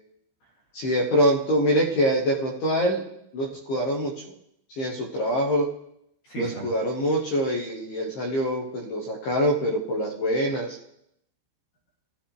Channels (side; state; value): right; late; 15 ms